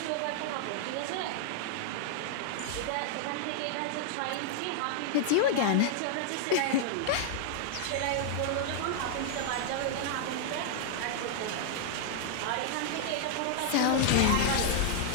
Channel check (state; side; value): different; both; correlation -0.01